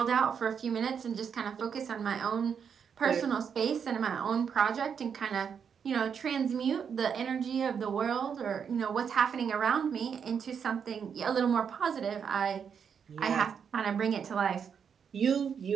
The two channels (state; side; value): quieter; left; 7.1 dB